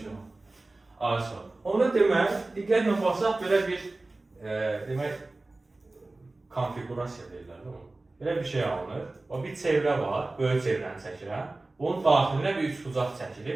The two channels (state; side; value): quieter; left; 3.1 dB